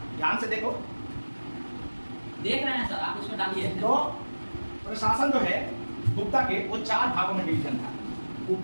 ध्यान से देखो, देख रहे हैं सर, आप उसमें डालिए। तो प्रशासन जो है गुप्ता के वो 4 भागों में डिवीजन था।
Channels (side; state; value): both; inverted; correlation -1.00